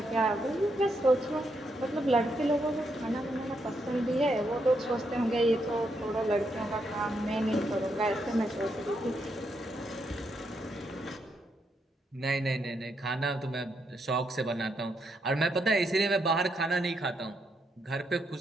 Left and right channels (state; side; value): normal; both; correlation 0.79